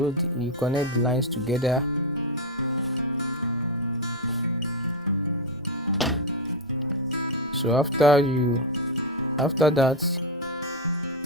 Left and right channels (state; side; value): normal; both; correlation 0.05